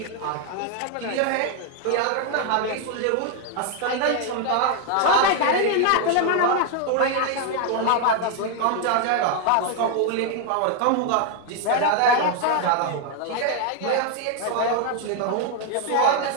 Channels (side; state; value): both; different; correlation 0.00